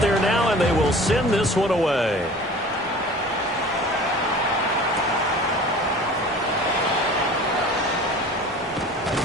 now, and they will send this one away.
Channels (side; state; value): both; normal; correlation 0.42